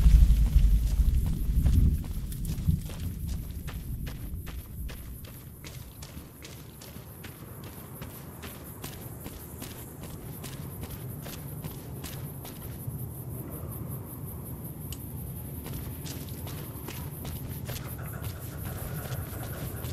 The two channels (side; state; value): both; identical; correlation 1.00